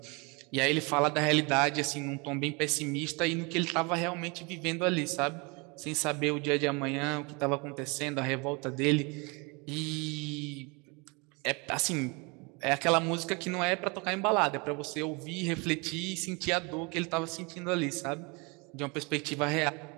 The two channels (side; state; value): left; quieter; 29.3 dB